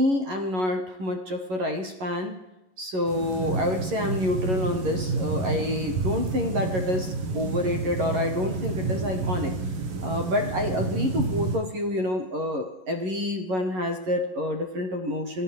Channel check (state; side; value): late; left; 11 ms